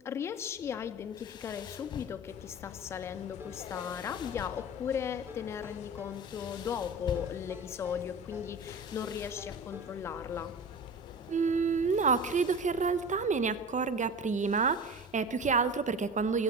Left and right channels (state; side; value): normal; both; correlation 0.33